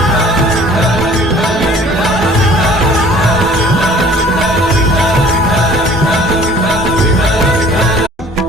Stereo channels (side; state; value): both; normal; correlation 0.51